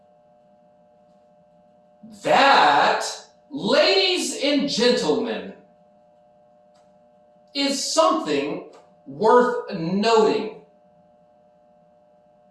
That, ladies and gentlemen, is something worth noting.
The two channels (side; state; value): both; identical; correlation 1.00